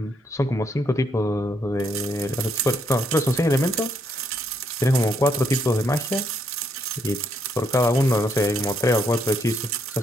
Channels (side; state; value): both; normal; correlation 0.74